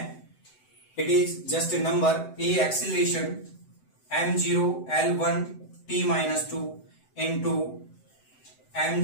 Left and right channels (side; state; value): right; late; 7.8 ms